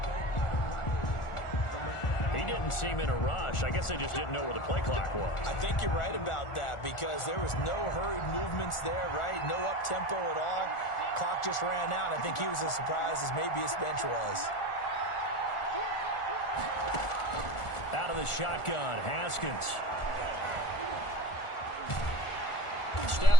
Seem in a rush. I guess they just didn't know where the play clock was. I think you're right about that because there was no hurried movements there, right? No up-tempo at all. Clock just ran out. I think he was as surprised as maybe his bench was. Out of the shotgun, Haskins.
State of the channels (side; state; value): right; late; 1.4 ms